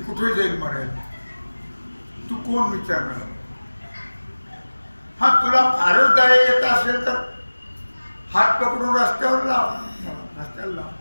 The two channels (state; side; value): inverted; both; correlation -1.00